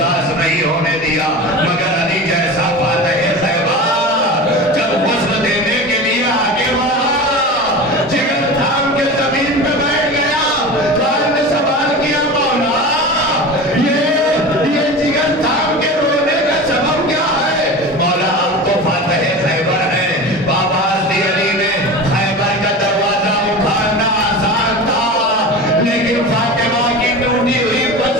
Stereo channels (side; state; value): both; normal; correlation 0.31